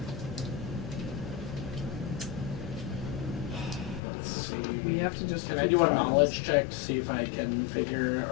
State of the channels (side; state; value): right; drops out; at 4.0 s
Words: Let's see. We have to just. Can I do a knowledge check to see if I can figure